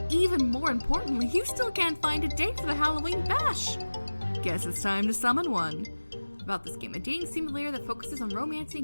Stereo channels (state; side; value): inverted; both; correlation -1.00